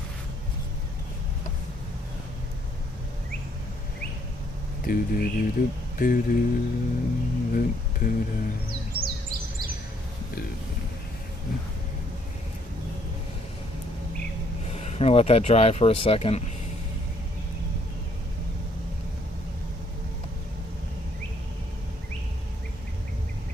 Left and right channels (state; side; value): normal; both; correlation 0.68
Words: I'm going to let that dry for a second.